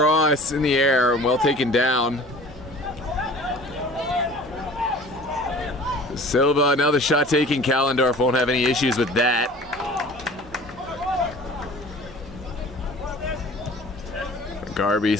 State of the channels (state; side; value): normal; both; correlation 0.45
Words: in the air and well taken down. Silva, now the shot taking. Callendorf won't have any issues with that. Garby